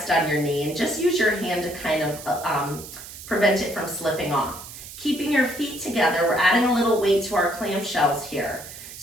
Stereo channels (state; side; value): noise; right; hiss, 14 dB below the sound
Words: on your knee and just use your hand to kind of prevent it from slipping off. Keeping your feet together, we're adding a little weight to our clamshells here.